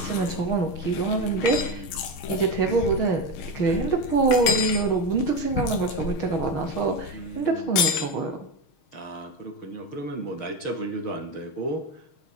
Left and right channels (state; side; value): late; right; 6.4 ms